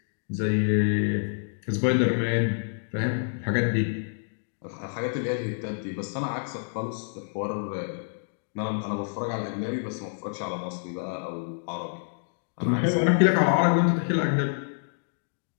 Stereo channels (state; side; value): silent; right; digital silence